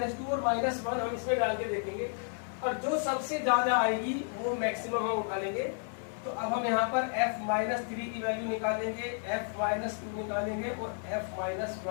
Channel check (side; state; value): right; silent; 56 dB below the other